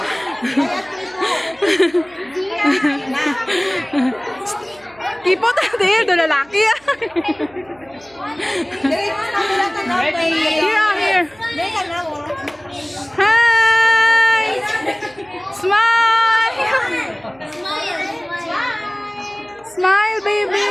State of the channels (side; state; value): right; noise; hum, 30 dB below the sound